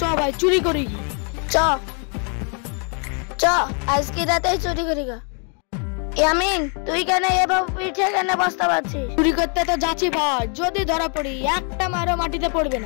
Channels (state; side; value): quieter; right; 39.3 dB